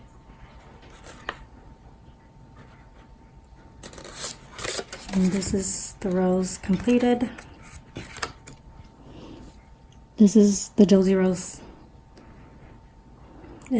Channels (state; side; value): identical; both; correlation 1.00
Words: And this is the rose completed. This is the Josie rose